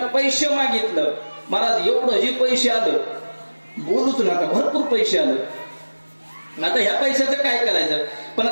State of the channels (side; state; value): both; inverted; correlation -1.00